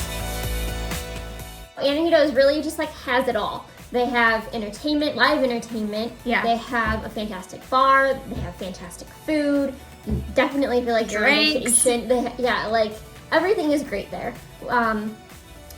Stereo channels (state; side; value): identical; both; correlation 1.00